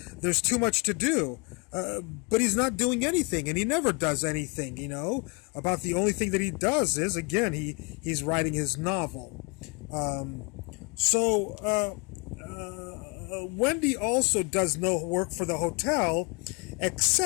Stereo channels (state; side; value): quieter; right; 31.8 dB